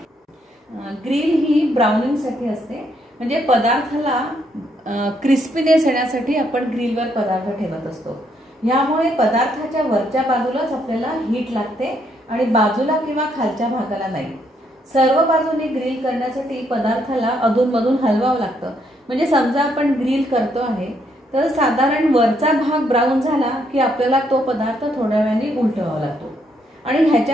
ग्रिल ही ब्राउनिंगसाठी असते, म्हणजे पदार्थाला क्रिस्पीनेस येण्यासाठी आपण ग्रिलवर पदार्थ ठेवत असतो. यामुळे पदार्थाच्या वरच्या बाजूलाच आपल्याला हीट लागते आणि बाजूला किंवा खालच्या भागाला नाही. सर्व बाजूने ग्रिल करण्यासाठी पदार्थाला अधूनमधून हलवावं लागतं. म्हणजे समजा आपण ग्रिल करतो आहे तर साधारण वरचा भाग ब्राऊन झाला की आपल्याला तो पदार्थ थोड्या वेळाने उलटवावा लागतो आणि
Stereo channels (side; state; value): both; normal; correlation 0.73